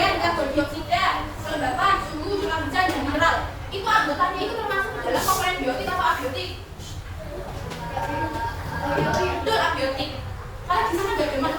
karbon dioksida, kelembapan, suhu, curah hujan, dan mineral. Itu anggotanya itu termasuk dalam komponen biotik atau abiotik? Betul, abiotik. Kalau di sana nggak ada makhluk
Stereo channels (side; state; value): both; identical; correlation 1.00